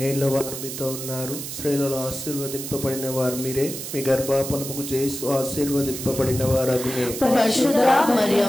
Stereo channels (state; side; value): noise; right; hiss, 8 dB below the sound